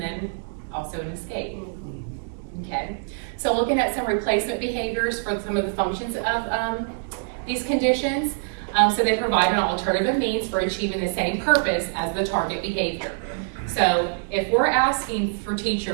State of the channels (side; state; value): left; silent; digital silence